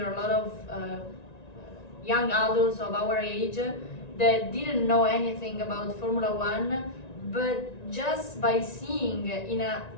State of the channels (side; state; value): right; late; 1.9 ms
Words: a lot of young adults of our age that didn't know anything about Formula One, but just by seeing in a